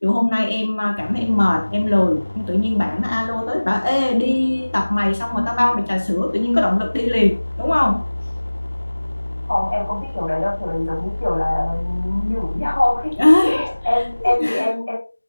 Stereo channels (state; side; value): inverted; both; correlation -1.00